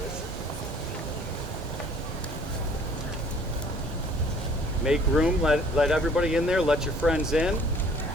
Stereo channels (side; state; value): both; normal; correlation 0.55